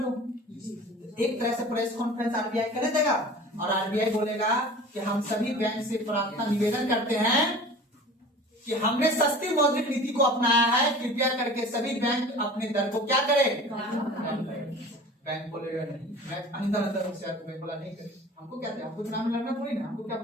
दो। एक तरह से प्रेस कॉन्फ्रेंस आरबीआई कर देगा और आरबीआई बोलेगा कि हम सभी बैंक से प्रार्थना निवेदन करते हैं कि हमने सस्ती मौद्रिक नीति को अपनाया है, कृपया करके सभी बैंक अपने दर को क्या करें, बैंक बोलेगा नहीं, मैं अंदर बैंक बोला नहीं करे, हमको क्या, हमको चुनाव में लड़ना थोड़ी ना, हमको क्या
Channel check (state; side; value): normal; both; correlation 0.41